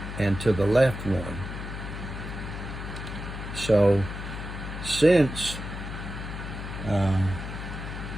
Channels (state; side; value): noise; left; hum, 7 dB below the sound